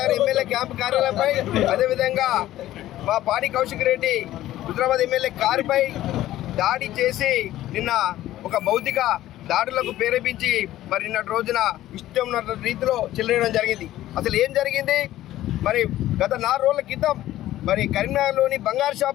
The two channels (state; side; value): quieter; right; 14.3 dB